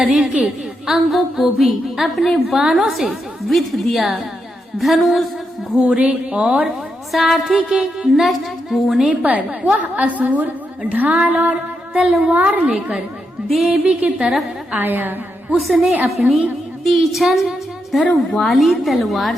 के अंगों को भी अपने बाणों से विध दिया। धनुष, घोड़े और सारथी के नष्ट होने पर वह असुर ढाल और तलवार लेकर देवी की तरफ आया। उसने अपनी तीक्ष्ण धार वाली तलवार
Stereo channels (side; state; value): both; normal; correlation 0.83